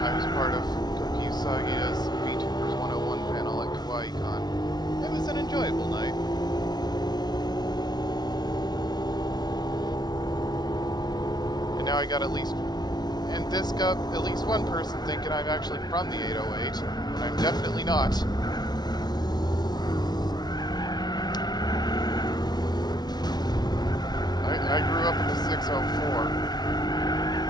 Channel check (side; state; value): right; late; 0.19 ms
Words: I was part of Koki Usagi's VTubers 101 panel at KawaiiCon. It was an enjoyable night. And now I got at least... And this got at least one person thinking I'm actually from the 808, when I'm definitely not. I grew up in the 604.